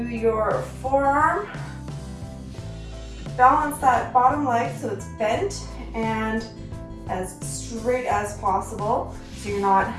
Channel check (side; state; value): both; identical; correlation 1.00